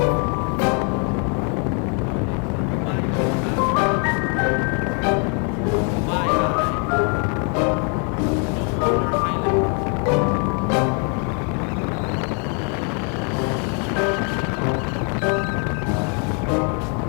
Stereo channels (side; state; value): right; quieter; 38.4 dB